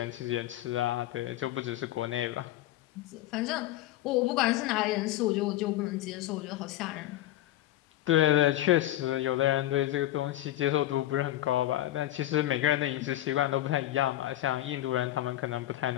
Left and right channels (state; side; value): quieter; right; 14.3 dB